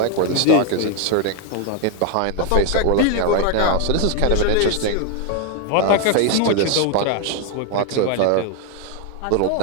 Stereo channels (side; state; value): both; different; correlation 0.01